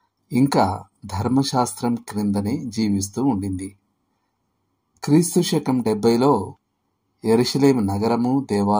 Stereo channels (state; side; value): identical; both; correlation 1.00